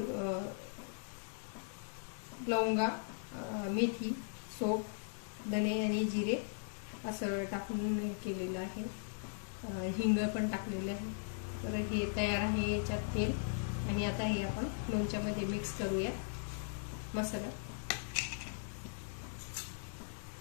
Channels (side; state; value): right; silent; digital silence